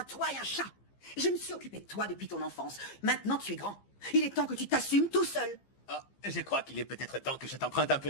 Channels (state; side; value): late; right; 15 ms